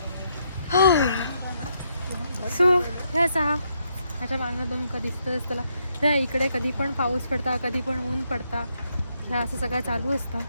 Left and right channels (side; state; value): both; inverted; correlation -0.77